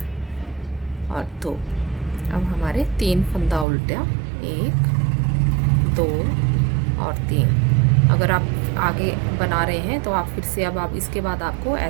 और 2। अब हमारे 3 फंदा उल्टा, 1 2 और 3। अगर आप आगे बना रहे हैं तो आप फिर से अब इसके बाद आपको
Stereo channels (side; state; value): left; drops out; at 3.7 s